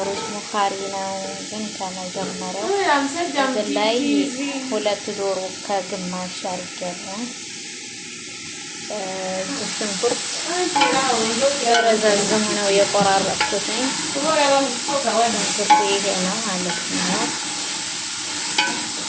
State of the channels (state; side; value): identical; both; correlation 1.00